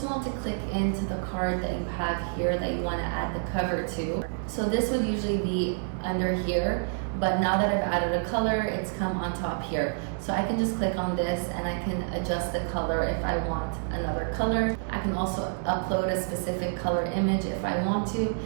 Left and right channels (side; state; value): left; silent; 57 dB below the other